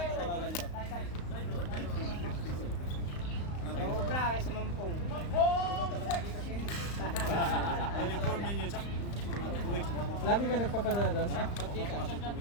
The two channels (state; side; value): late; right; 35 ms